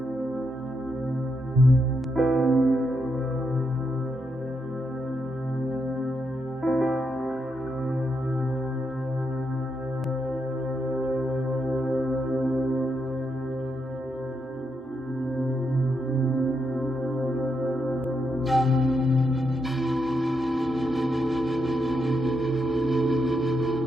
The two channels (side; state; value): both; normal; correlation 0.81